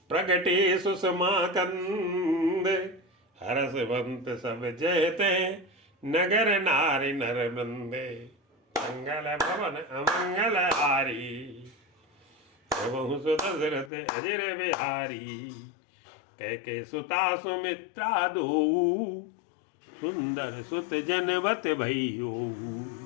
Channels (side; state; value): right; drops out; at 13.9 s